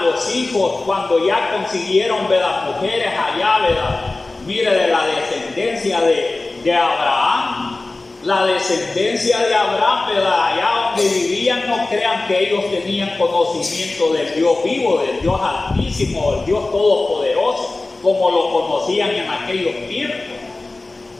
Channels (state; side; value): quieter; right; 3.2 dB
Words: los hijos, cuando ya consiguieron, ¿verdad?, mujeres allá, ¿verdad?, mire, de la descendencia de Abraham. La descendencia de Abraham, ¿verdad?, allá donde vivían, no crean que ellos tenían conocimiento del Dios vivo, del Dios altísimo, del Dios todopoderoso, como lo conocían en aquellos tiempos.